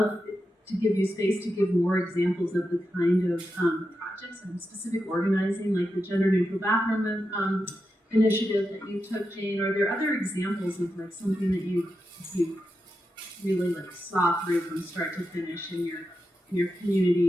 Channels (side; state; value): both; normal; correlation 0.88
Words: to give you space to give more examples of the kind of projects and specific organizing, like the gender neutral bathroom initiative that you took, Jane. Are there other examples of like something that you really like saw through from start to finish in your